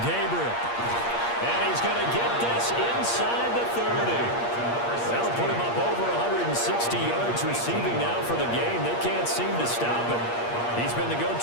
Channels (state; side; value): late; right; 8.5 ms